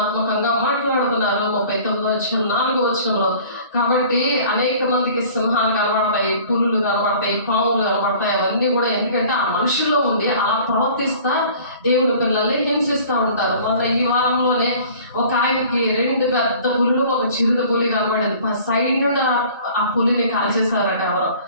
మాట్లాడుతున్నారు 39వ అధ్యాయం 4వ వచనంలో. కాబట్టి అనేక మందికి సింహాలు కనబడతాయి, పులులు కనబడతాయి, పాములు కనబడతాయి. అవన్నీ కూడా ఎందుకంటే ఆ మనుషుల్లో ఉండి అలా ప్రవర్తిస్తా దేవుని పిల్లల్ని హింసిస్తూ ఉంటారు. మొన్న ఈ వారంలోనే ఒక ఆయనకి 2 పెద్ద పులులు, ఒక చిరుత పులి కనబడేది. సైడ్ నుండి ఆ పులిని కాల్చేశారట. ఎవరో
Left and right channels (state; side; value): inverted; both; correlation -0.48